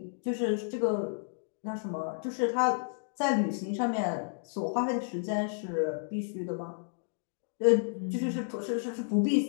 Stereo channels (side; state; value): right; silent; digital silence